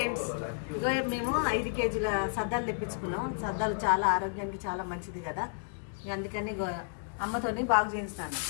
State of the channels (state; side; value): silent; right; digital silence